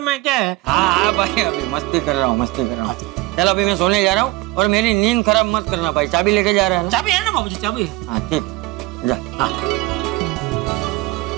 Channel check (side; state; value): left; quieter; 19.5 dB